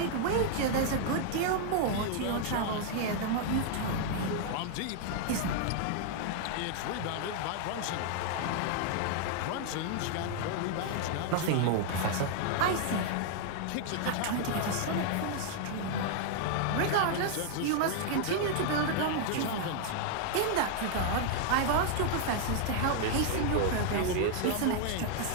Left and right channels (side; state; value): both; different; correlation 0.00